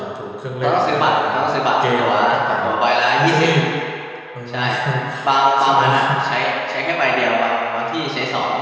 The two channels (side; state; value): both; identical; correlation 1.00